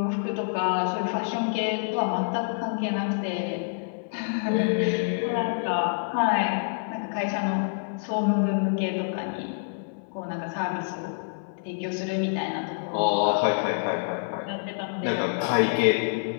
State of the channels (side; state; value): right; silent; 60 dB below the other